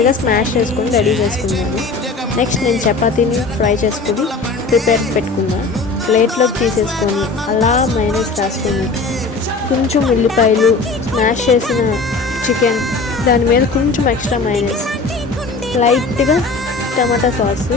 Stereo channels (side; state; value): right; quieter; 3.9 dB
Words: స్మాష్ చేసుకొని రెడీ చేసుకున్నాను. నెక్స్ట్ నేను చపాతీని ఫ్రై చేసుకొని ప్రిపేర్ పెట్టుకున్నాను. ప్లేట్లోకి తీసేసుకొని అలా మైనస్ రాసుకొని కొంచెం ఉల్లిపాయలు, స్మాష్ చేసిన చికెన్, దాని మీద కొంచెం ఎక్స్ట్రా మైనస్, లైట్గా టమాటా సాస్,